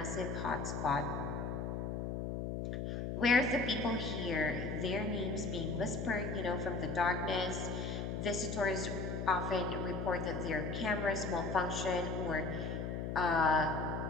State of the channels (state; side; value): noise; left; hum, 3 dB below the sound